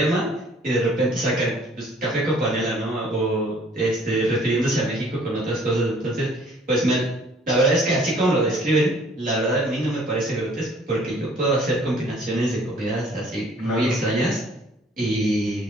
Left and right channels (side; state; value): both; normal; correlation 0.57